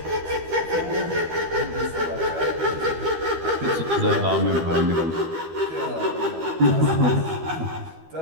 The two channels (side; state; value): left; late; 12 ms